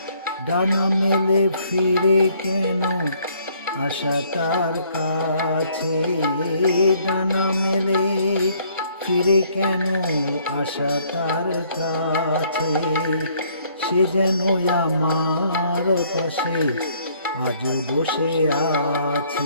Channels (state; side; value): inverted; both; correlation -0.64